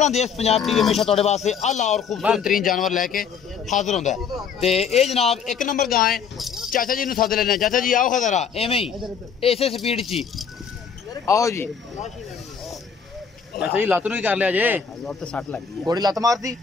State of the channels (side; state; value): right; quieter; 6.6 dB